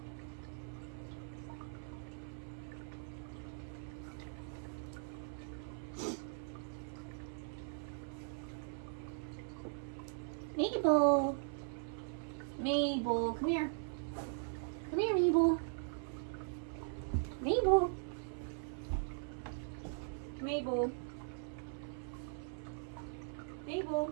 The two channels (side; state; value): left; silent; 51 dB below the other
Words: Mabel! Mabel, come here. Come here, Mabel. Mabel. Mabel. Mabel.